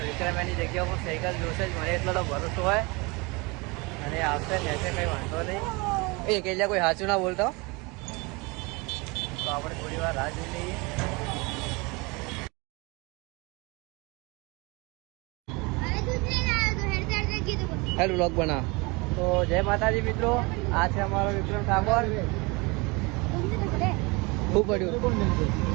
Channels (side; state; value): left; quieter; 26.8 dB